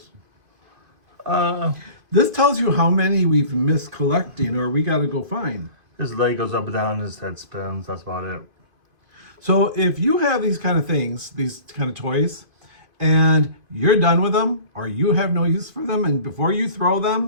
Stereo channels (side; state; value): left; late; 2.5 ms